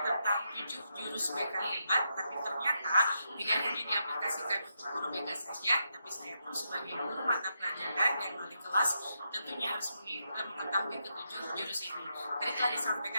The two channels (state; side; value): inverted; both; correlation -0.82